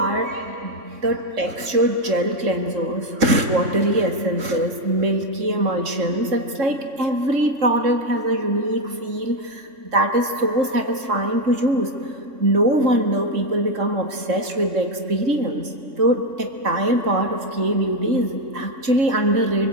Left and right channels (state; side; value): late; left; 3.7 ms